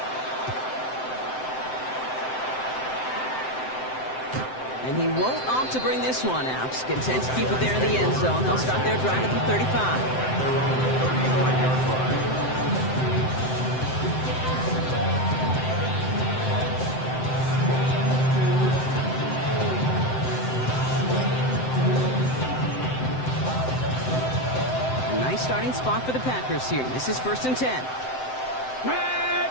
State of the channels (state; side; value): late; right; 7.8 ms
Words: And he won't opt to bring this one out. Content to keep it there in the end zone. They'll start their drive at the 35. Nice starting spot for the Packers here. This is 1st and 10. Red.